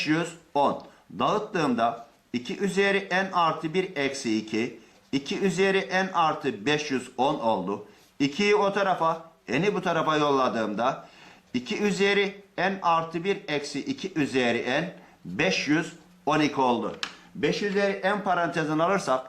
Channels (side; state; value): both; identical; correlation 1.00